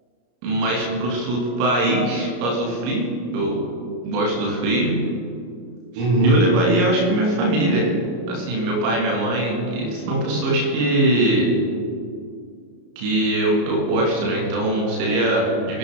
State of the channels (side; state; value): left; late; 33 ms